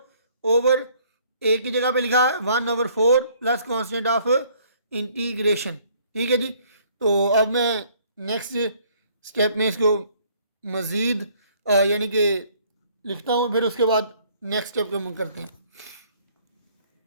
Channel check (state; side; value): inverted; both; correlation -0.61